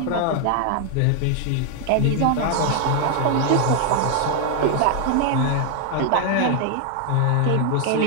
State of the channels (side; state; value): both; different; correlation 0.00